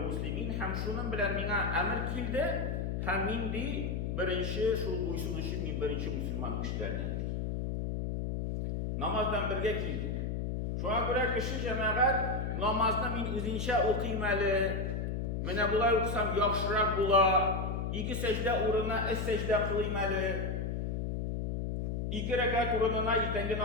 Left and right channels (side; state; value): left; noise; hum, 1 dB below the sound